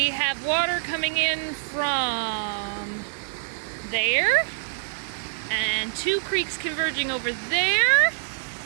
have water coming in from there, and two creeks converging over there,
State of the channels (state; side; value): silent; left; digital silence